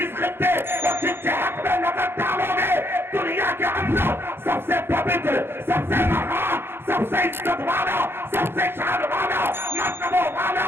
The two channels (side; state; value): left; late; 0.11 ms